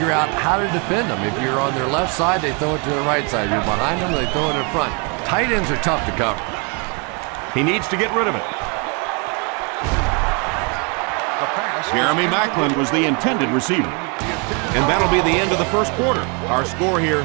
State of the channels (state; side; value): quieter; left; 34.2 dB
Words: out how to defend them. If you're on their left side, they throw it to their right side. If you're behind them, they throw it in front. Tight ends are tough to cover. He needs to get rid of it. Jeremy Maclin was the intended receiver. And that'll be the end of the first quarter. Our score here,